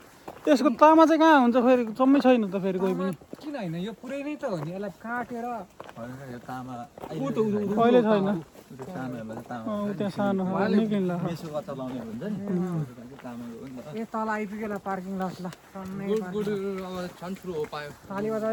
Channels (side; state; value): both; identical; correlation 1.00